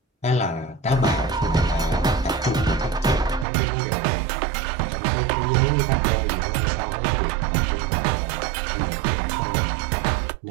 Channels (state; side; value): drops out; left; at 3.5 s